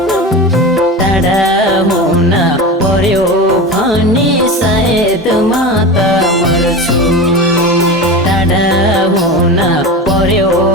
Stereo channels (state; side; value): normal; both; correlation 0.27